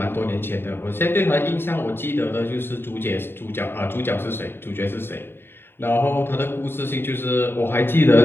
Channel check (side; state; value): right; late; 0.11 ms